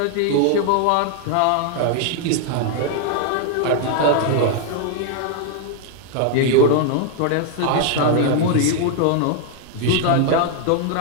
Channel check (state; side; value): different; both; correlation 0.00